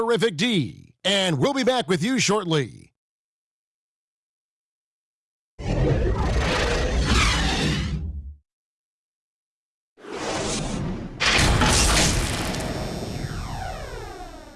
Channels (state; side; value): identical; both; correlation 1.00